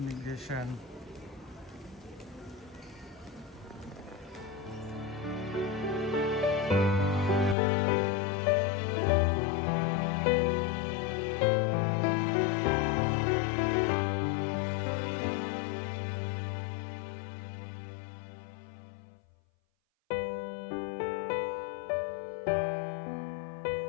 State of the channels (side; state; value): right; drops out; at 7.6 s